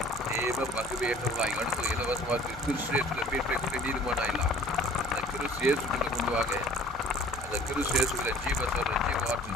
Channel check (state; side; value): normal; both; correlation 0.50